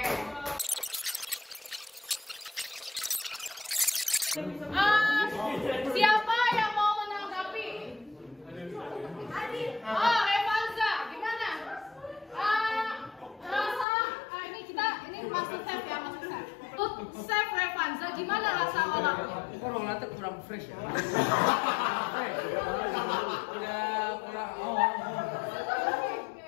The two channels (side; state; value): right; drops out; at 13.9 s